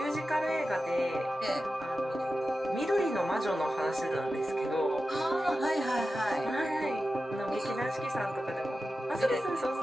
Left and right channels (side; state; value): both; normal; correlation 0.92